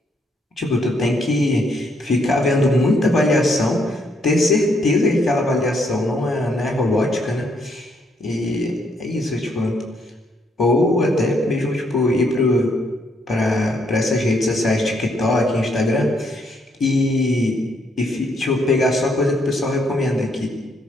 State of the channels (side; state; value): both; normal; correlation 0.73